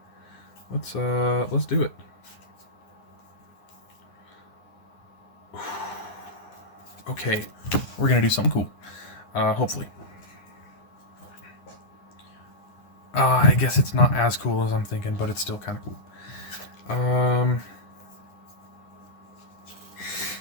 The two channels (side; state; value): right; late; 9.7 ms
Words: Let's do it. Okay, we're gonna do something cool. Hopefully. I guess it's not as cool as I'm thinking, but it's still kind of cool.